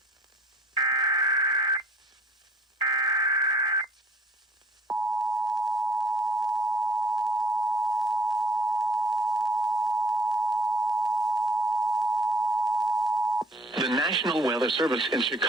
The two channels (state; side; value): normal; both; correlation 0.56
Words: The National Weather Service in